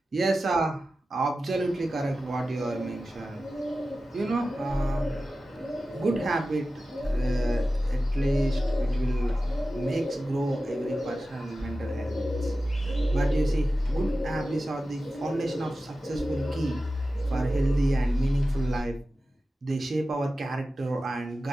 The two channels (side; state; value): both; normal; correlation 0.94